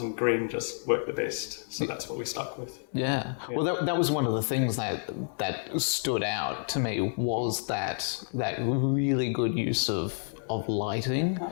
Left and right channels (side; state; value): right; silent; digital silence